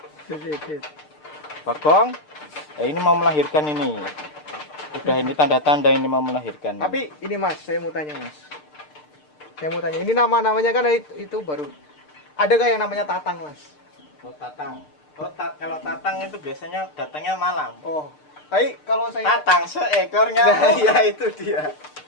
Bagong. Ya ini mau melahirkan ini. Udah ini tanda-tanda ini mau melahirkan. Tapi ini mas, saya mau tanya mas. Ini nama-namanya kan itu baru. Adakah yang namanya Tatang mas? Oh Tatang. Oh kalau Tatang itu biasanya datangnya malam. Oh. Tapi kalau saya Tatang seekornya. Nah, ya itu dia.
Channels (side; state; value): right; late; 6.7 ms